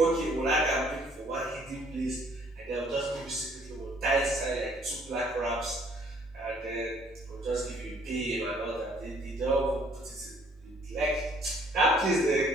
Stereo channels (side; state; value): both; normal; correlation 0.61